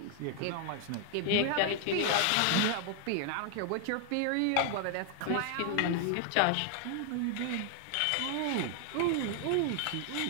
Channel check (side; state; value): both; different; correlation 0.00